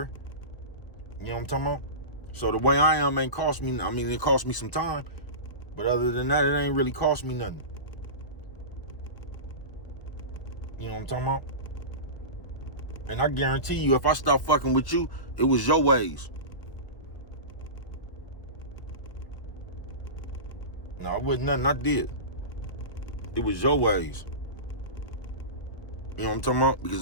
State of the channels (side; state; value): right; late; 1.4 ms